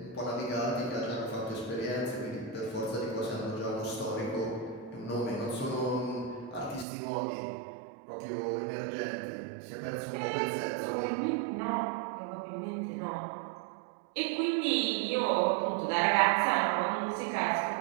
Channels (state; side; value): drops out; left; at 6.9 s